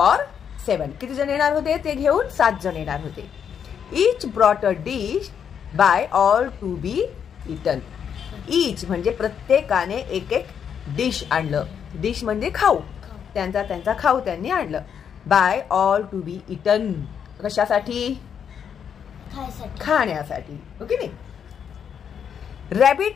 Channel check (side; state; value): right; quieter; 7.8 dB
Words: 7. किती जण येणार होते ते घेऊन? 7 जण येणार होते. Each brought a dish by all to be eaten. Each म्हणजे प्रत्येकाने एक एक डिश आणलं. डिश म्हणजे खाऊ, त्यांचा खाऊ त्यांनी आणलं. By all to be eaten कशासाठी? खाण्यासाठी, ओके नाही?